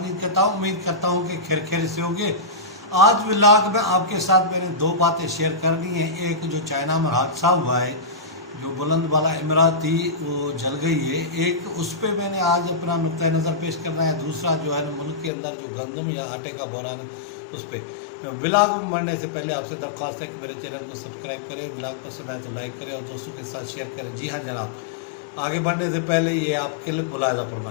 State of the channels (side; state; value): right; drops out; at 15.3 s